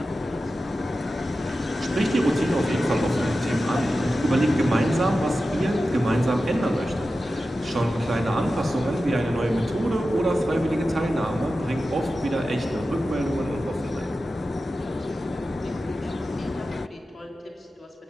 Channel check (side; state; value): both; normal; correlation 0.93